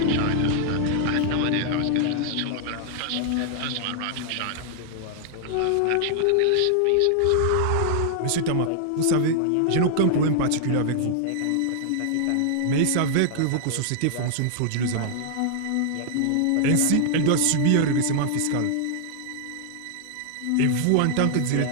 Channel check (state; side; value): different; both; correlation 0.00